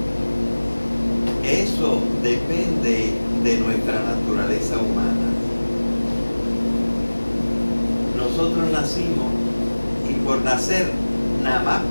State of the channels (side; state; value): both; inverted; correlation -1.00